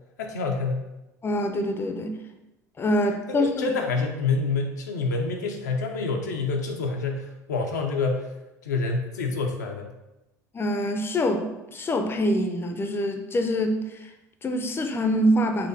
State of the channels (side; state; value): both; normal; correlation 0.48